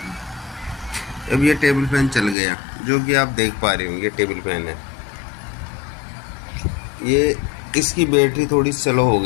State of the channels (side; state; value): right; drops out; at 2.4 s